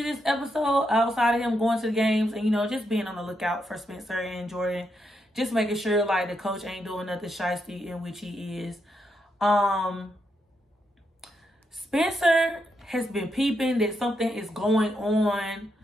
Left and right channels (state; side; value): normal; both; correlation 0.81